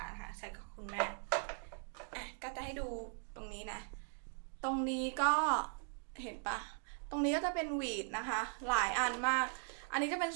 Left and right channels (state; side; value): silent; left; 51 dB below the other